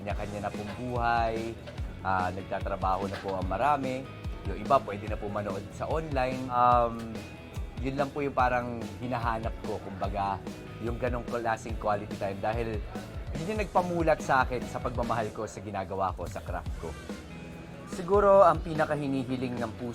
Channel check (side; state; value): both; identical; correlation 1.00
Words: na pong buhay, nagtatrabaho na po ang marami. Yung iba pwede na po manood sa online. Yun lang po yung parang hinahanap ko, kumbaga, yung ganong klaseng quality time. Dahil yun yung nagpamulat sa akin sa pagmamahal ko sa ginagawa ko, sa craft ko. Siguro ang pinakahinihiling ng